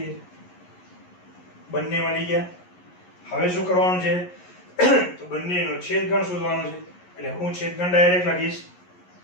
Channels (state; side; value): late; right; 11 ms